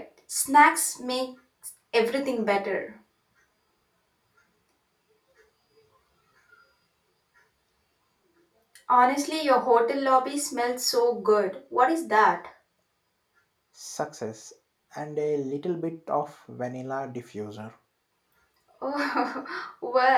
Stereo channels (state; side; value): identical; both; correlation 1.00